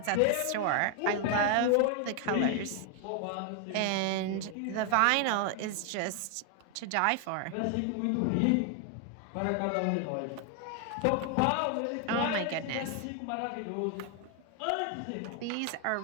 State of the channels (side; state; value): both; different; correlation 0.01